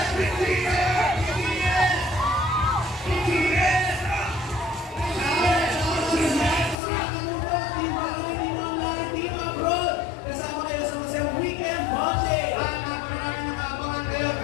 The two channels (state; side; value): drops out; right; at 6.8 s